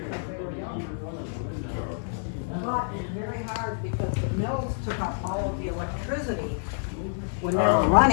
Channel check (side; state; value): right; silent; 59 dB below the other